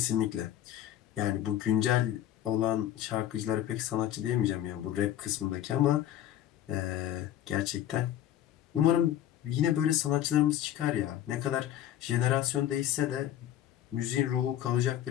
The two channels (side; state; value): right; quieter; 11.8 dB